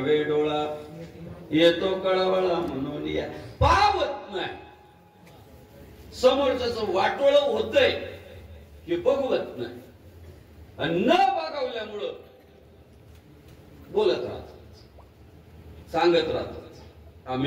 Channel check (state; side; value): identical; both; correlation 1.00